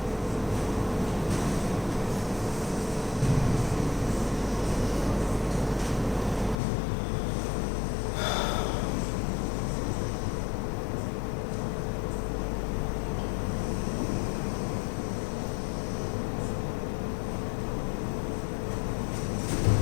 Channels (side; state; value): right; drops out; at 6.6 s